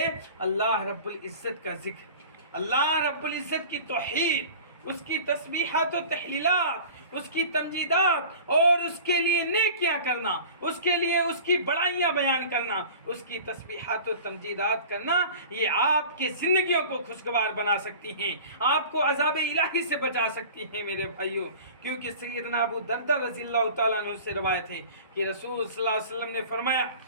اللہ رب العزت کا ذکر، اللہ رب العزت کی توحید، اس کی تسبیحات و تحلیلات، اس کی تمجیدات اور اس کے لیے نیکیاں کرنا، اس کے لیے اس کی بڑائیاں بیان کرنا، اس کی تسبیحات و تمجیدات کرنا، یہ آپ کی زندگیوں کو خوشگوار بنا سکتی ہیں، آپ کو عذاب الہی سے بچا سکتی ہیں۔ میرے بھائیوں، کیونکہ سیدنا ابو دردہ رضی اللہ تعالیٰ عنہ سے روایت ہے کہ رسول صلی اللہ علیہ وسلم نے فرمایا،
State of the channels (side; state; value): both; inverted; correlation -0.40